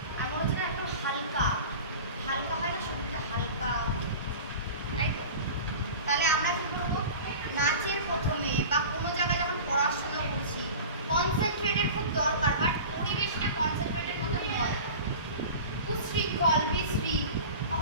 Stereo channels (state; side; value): inverted; both; correlation -0.36